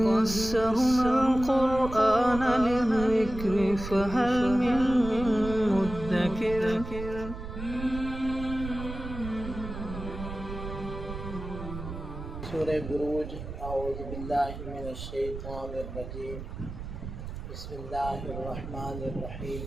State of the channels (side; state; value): right; noise; rumble, 9 dB below the sound